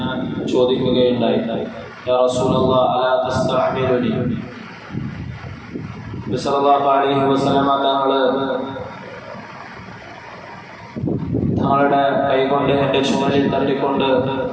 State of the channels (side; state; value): both; identical; correlation 1.00